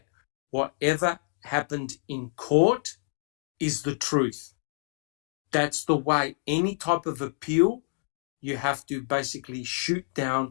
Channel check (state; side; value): silent; right; digital silence